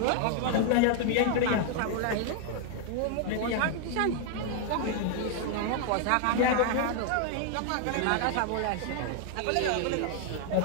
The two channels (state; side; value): different; both; correlation 0.00